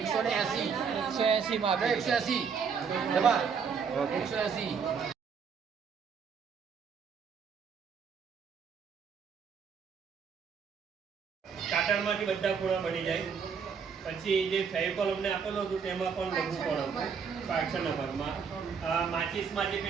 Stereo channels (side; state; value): left; quieter; 6.3 dB